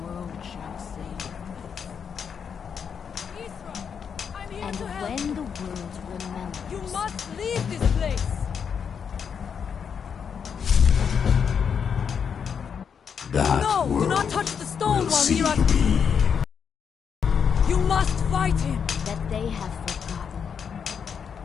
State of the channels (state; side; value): quieter; right; 7.0 dB